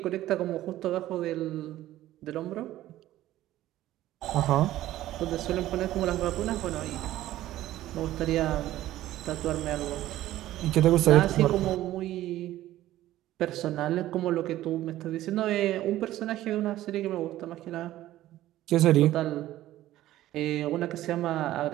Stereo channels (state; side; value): quieter; left; 14.5 dB